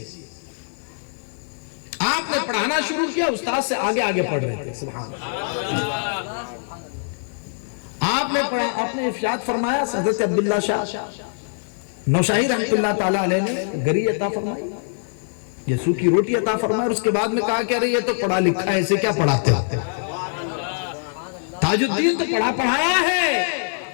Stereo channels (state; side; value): silent; right; digital silence